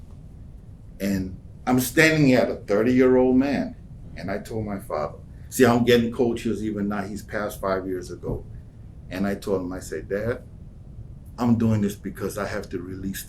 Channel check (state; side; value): identical; both; correlation 1.00